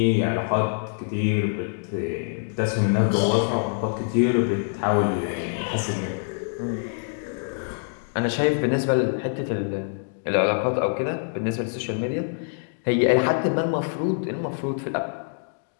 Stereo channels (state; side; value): silent; right; digital silence